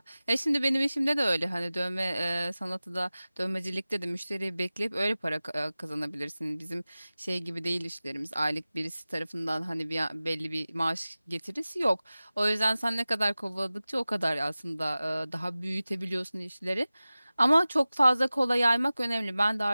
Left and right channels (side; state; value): both; inverted; correlation -0.97